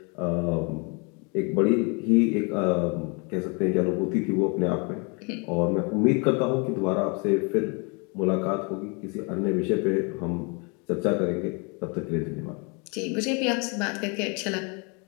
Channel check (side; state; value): right; quieter; 32.4 dB